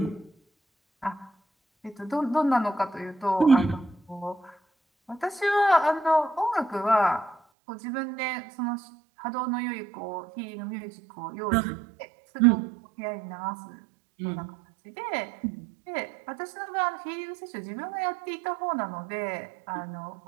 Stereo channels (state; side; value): drops out; left; at 7.4 s